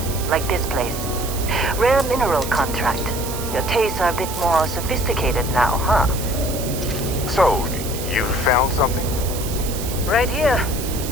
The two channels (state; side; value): noise; right; hiss, 9 dB below the sound